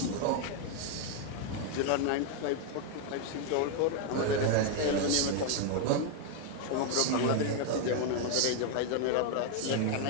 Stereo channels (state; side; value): different; both; correlation 0.00